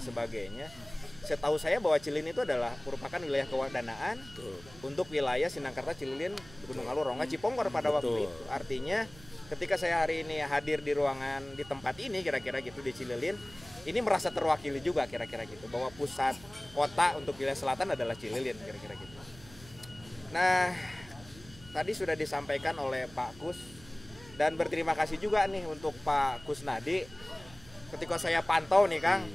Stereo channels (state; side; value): noise; right; hum, 21 dB below the sound